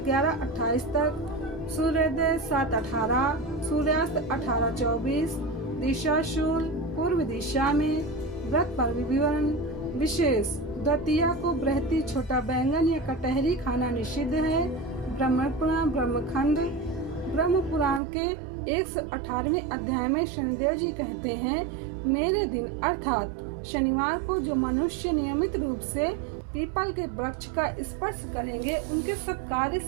11:28 तक, सूर्योदय 7:18, सूर्यास्त 18:24, दिशा शूल पूर्व दिशा में, व्रत पर विवरण विशेष, द्वितीया को बृहति छोटा बैंगन या कटहरी खाना निषिद्ध है। ब्रह्म पुराण ब्रह्मखंड ब्रह्म पुराण के 118वें अध्याय में शनिदेव जी कहते हैं, मेरे दिन अर्थात शनिवार को जो मनुष्य नियमित रूप से पीपल के वृक्ष का स्पर्श करेंगे उनके सब कार्य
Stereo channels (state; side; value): drops out; left; at 18.0 s